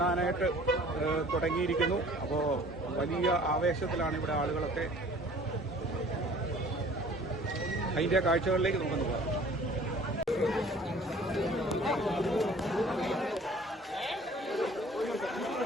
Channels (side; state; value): both; normal; correlation 0.50